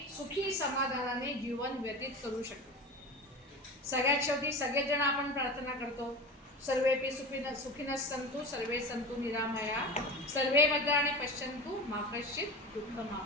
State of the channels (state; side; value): normal; both; correlation 0.29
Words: सुखी समाधानाने जीवन व्यतीत करू शकतो. सगळ्यात शेवटी सगळेजण आपण प्रार्थना करतो, सर्वेपि सुखिनः सन्तु सर्वे सन्तु निरामया सर्वे भद्राणि पश्यन्तु मा कश्चित्